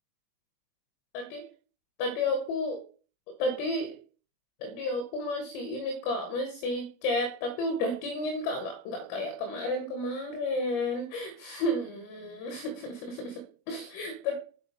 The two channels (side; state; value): right; late; 21 ms